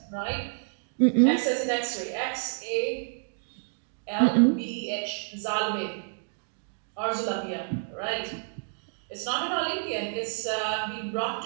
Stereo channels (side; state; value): left; silent; 59 dB below the other